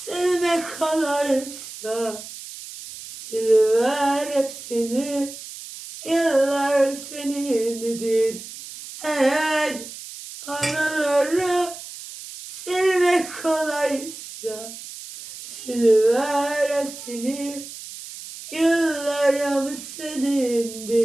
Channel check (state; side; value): noise; right; hiss, 13 dB below the sound